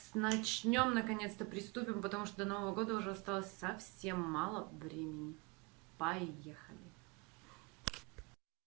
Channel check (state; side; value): quieter; left; 27.9 dB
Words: начнем, наконец-то приступим, потому что до Нового года уже осталось совсем мало времени. Поехали!